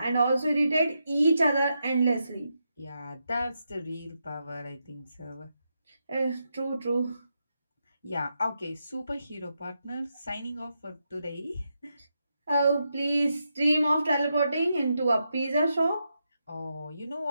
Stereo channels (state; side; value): inverted; both; correlation -0.85